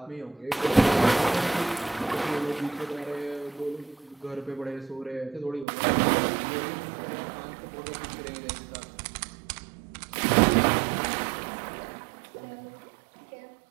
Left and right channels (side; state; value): left; drops out; at 5.7 s